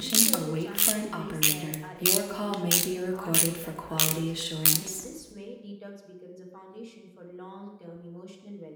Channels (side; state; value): both; identical; correlation 1.00